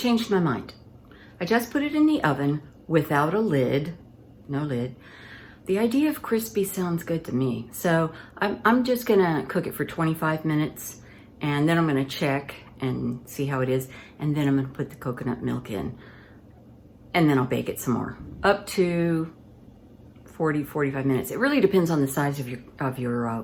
my mind. I just put it in the oven without a lid, no lid. The idea of crispy sounds good to me. So I'm just gonna cook it for 25 minutes, and then I'm gonna check and see how it is, and then I'm gonna put the coconut milk in, and then I'll bake it some more, up to 40, 45 minutes. It really depends on the size of your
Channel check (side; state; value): both; identical; correlation 1.00